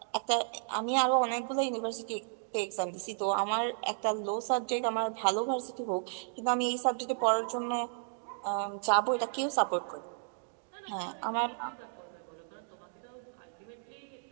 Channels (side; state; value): left; silent; digital silence